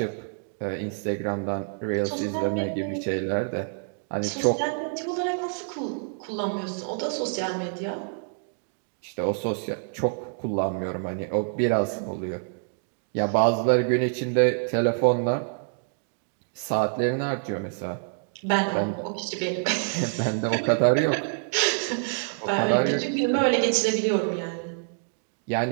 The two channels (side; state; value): left; silent; digital silence